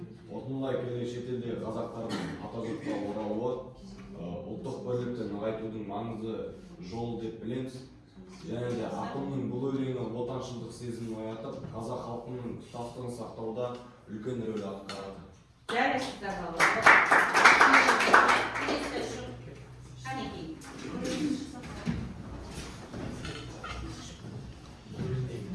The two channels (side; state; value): both; identical; correlation 1.00